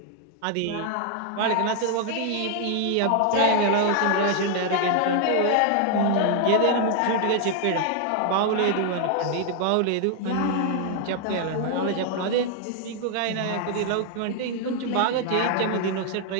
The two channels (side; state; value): both; different; correlation 0.00